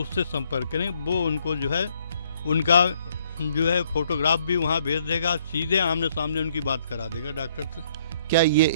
संपर्क करें। वो उनको जो है उनका जो है फोटोग्राफ भी वहाँ भेज देगा, सीधे आमने सामने उनकी बात करा देगा डॉक्टर से। क्या ये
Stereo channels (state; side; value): inverted; both; correlation -0.67